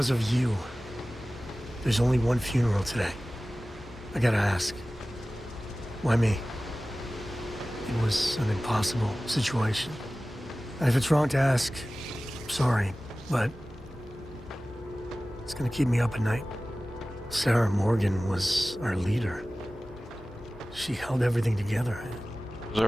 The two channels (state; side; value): normal; both; correlation 0.97